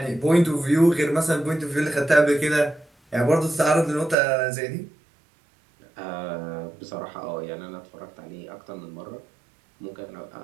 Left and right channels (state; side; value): drops out; left; at 4.2 s